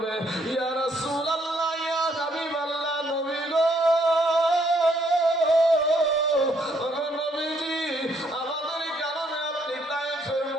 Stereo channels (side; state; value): both; normal; correlation 0.69